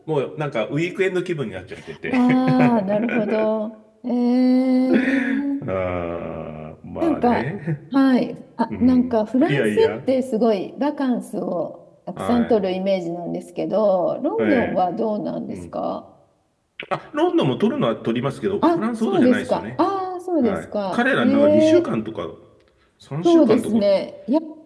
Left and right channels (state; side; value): identical; both; correlation 1.00